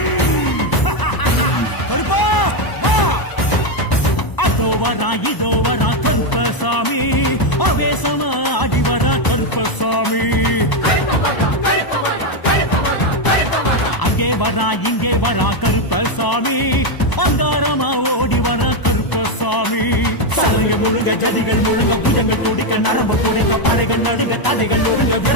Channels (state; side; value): late; right; 1.0 ms